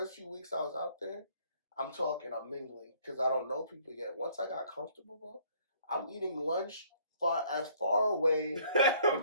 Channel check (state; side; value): inverted; both; correlation -0.60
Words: few weeks I was out there, I'm mingling because I don't know people yet. Once I got comfortable, bro, I'm eating lunch far away